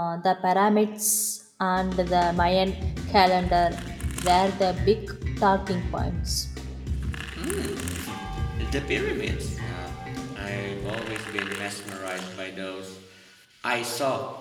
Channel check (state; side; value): identical; both; correlation 1.00